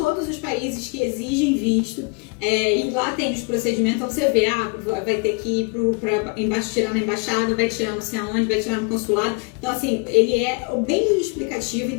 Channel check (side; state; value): right; quieter; 32.1 dB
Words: os países que exigem visto, e lá tem os procedimentos. Então você vê, vai ter que ir para tirar na embaixada, vai tirar não sei aonde, vai tirar no consulado. Então assim, ele é bem explicativo,